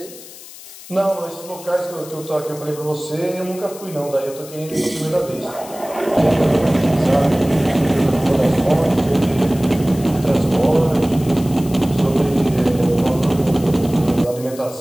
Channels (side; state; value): left; noise; hiss, 17 dB below the sound